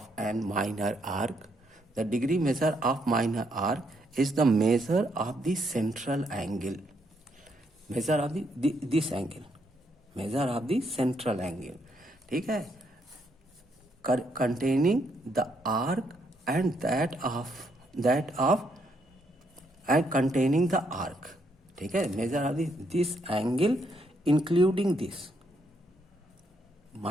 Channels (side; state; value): both; normal; correlation 0.75